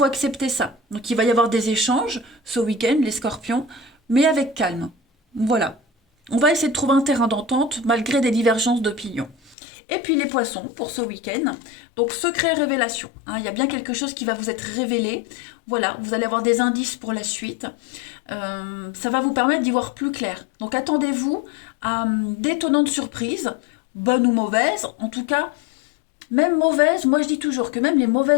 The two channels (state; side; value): drops out; right; at 9.6 s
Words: accepter ça. Donc il va y avoir des échanges ce week-end, les scorpions, mais avec calme. Voilà. On va essayer de trouver un terrain d'entente malgré des divergences d'opinion. Et puis les poissons pour ce week-end. Donc secret révélation, hein, il y a bien quelque chose qui va vous être révélé. Voilà, vous allez avoir des indices pour la suite. Ça va vous permettre d'y voir plus clair. Donc attendez-vous à d'étonnantes surprises, bonnes ou mauvaises. En tout cas, même mauvaises, moi je dis toujours que même les